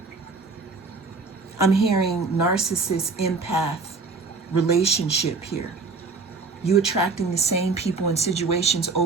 I'm hearing narcissist, empath relationship here. You attracting the same people and situations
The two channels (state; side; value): quieter; left; 4.2 dB